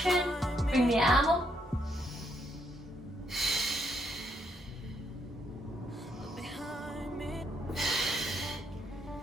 bring the arm up.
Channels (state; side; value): normal; both; correlation 0.75